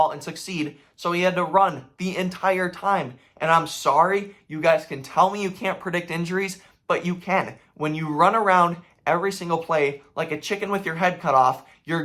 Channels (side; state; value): both; identical; correlation 1.00